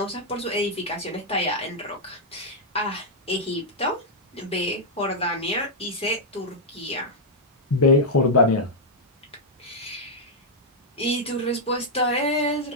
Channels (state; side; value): normal; both; correlation -0.06